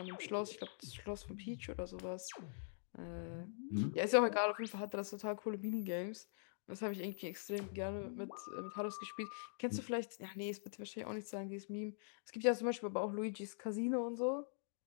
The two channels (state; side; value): silent; right; digital silence